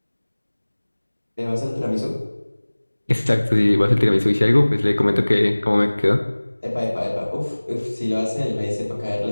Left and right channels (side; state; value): both; inverted; correlation -1.00